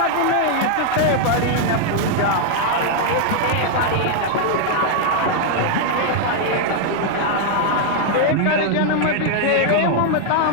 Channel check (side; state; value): both; different; correlation 0.00